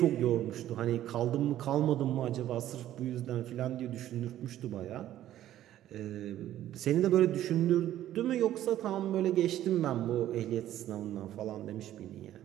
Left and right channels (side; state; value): left; quieter; 12.7 dB